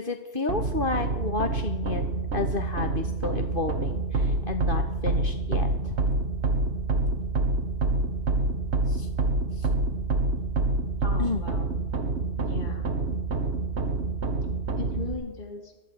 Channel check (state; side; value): late; left; 2.5 ms